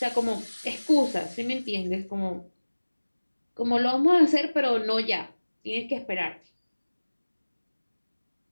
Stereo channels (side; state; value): both; inverted; correlation -1.00